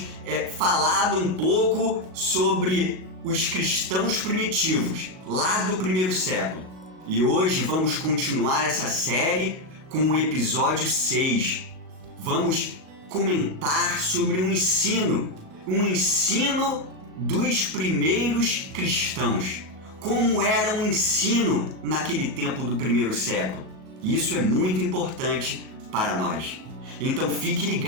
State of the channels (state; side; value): late; left; 37 ms